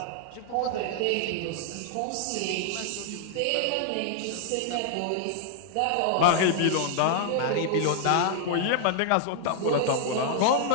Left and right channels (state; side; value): different; both; correlation 0.00